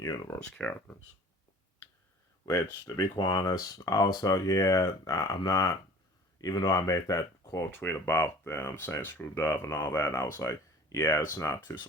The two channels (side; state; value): both; normal; correlation 0.46